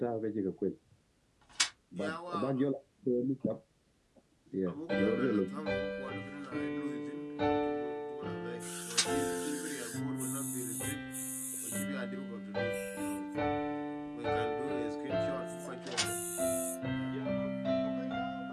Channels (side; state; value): both; identical; correlation 1.00